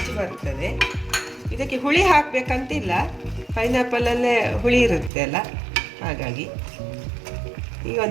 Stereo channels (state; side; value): drops out; left; at 5.1 s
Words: ಬರ್ತದೆ. ಇದಕ್ಕೆ ಹುಳಿ ಹಾಕಬೇಕಂತಿಲ್ಲ, ಪೈನಾಪಲಲ್ಲೇ ಹುಳಿ ಇರುತ್ತೆ ಅಲ್ಲ, ಹಾಗಾಗಿ. ಈಗ